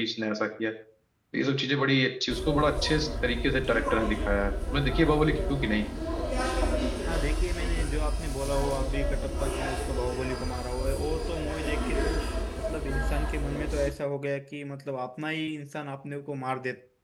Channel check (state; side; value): identical; both; correlation 1.00